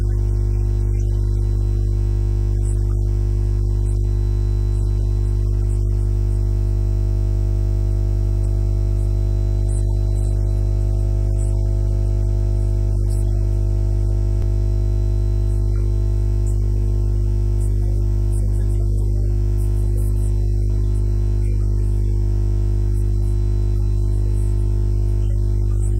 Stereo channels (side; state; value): both; identical; correlation 1.00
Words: diario es mejor masajar, dar masaje. Sí, dar masaje. Dar masaje, sí. Okay. One word I learned, masaje. Masaje, yeah. Masaje sí. for the terriers. Masaje. Yeah, so, okay. Should I talk a little bit more? So, okay, so the general, for the first round, I will use the stripping knife. Él va a